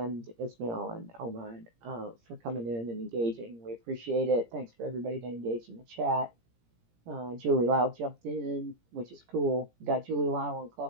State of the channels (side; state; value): left; late; 17 ms